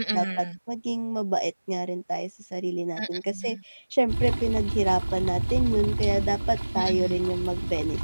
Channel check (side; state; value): both; inverted; correlation -1.00